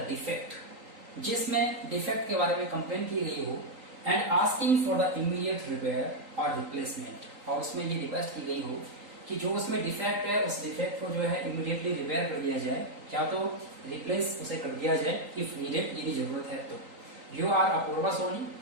डिफेक्ट, जिसमें डिफेक्ट के बारे में कंप्लेन की गई हो and asking for the immediate repair और रिप्लेसमेंट. और उसमें ये रिक्वेस्ट की गई हो कि जो उसमें डिफेक्ट है उस डिफेक्ट को जो है इमीडिएटली रिपेयर कर दिया जाए या तो रिप्लेस उसे कर दिया जाए इफ नीडेड, यदि जरूरत है तो. यू आर अपूर्वा सोनी,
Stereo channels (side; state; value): left; late; 3.9 ms